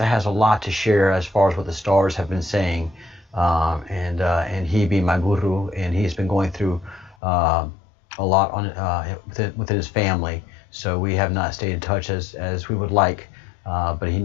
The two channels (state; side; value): drops out; right; at 7.2 s